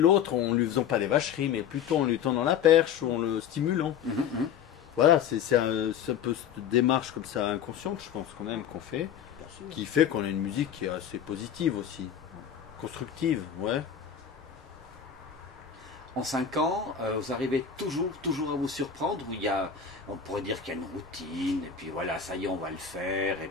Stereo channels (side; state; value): right; quieter; 8.0 dB